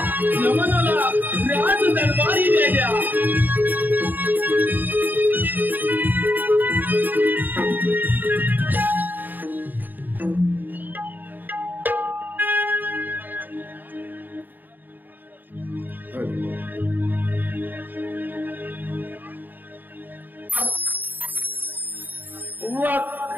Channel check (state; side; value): late; left; 0.089 ms